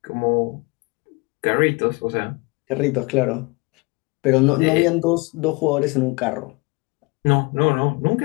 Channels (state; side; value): quieter; right; 27.5 dB